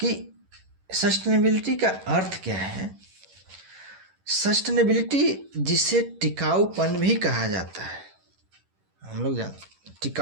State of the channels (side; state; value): left; late; 11 ms